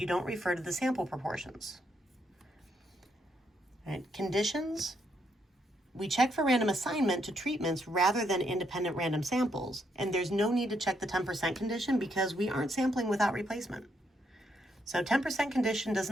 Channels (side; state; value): both; normal; correlation 0.76